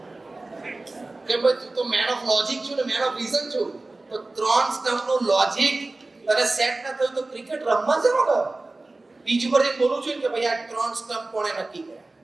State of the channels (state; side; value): quieter; left; 3.1 dB